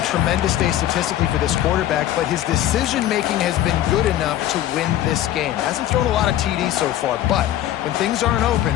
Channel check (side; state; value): right; quieter; 12.5 dB